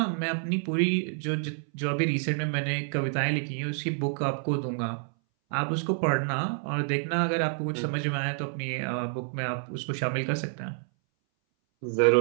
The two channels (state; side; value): silent; left; 59 dB below the other